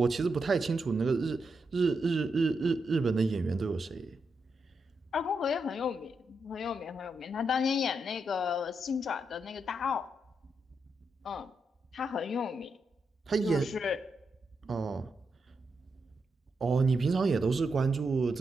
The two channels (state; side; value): normal; both; correlation 0.83